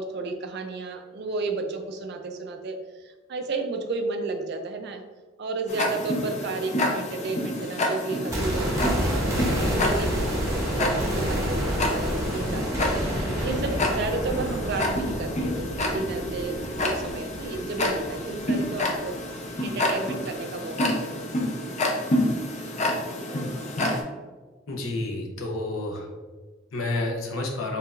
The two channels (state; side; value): normal; both; correlation 0.41